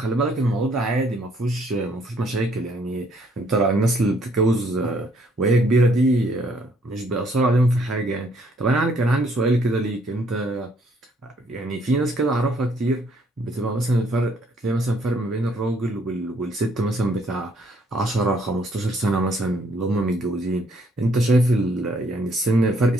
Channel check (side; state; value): both; normal; correlation 0.66